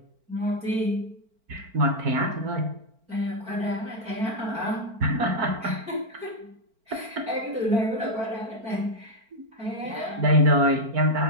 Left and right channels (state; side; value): late; left; 4.4 ms